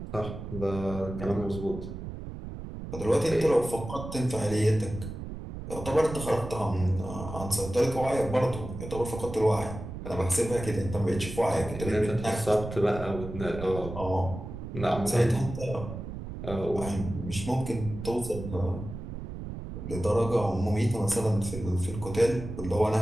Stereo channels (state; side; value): noise; right; rumble, 9 dB below the sound